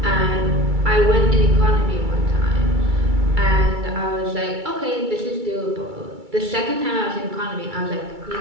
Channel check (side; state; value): left; late; 2.3 ms